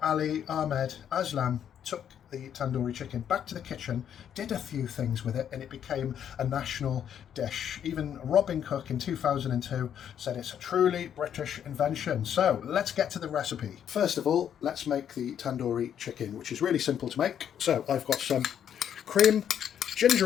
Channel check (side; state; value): right; quieter; 9.1 dB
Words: Ahmed Aslam took the tandoori chicken back to the kitchen, did a few things with it, and it became a national dish. Even Robin Cook in 2002 said it's a truly British invention. So let's get to the recipe. First of all, let's make the tandoori chicken, which is really simple to make. So I've got some cream,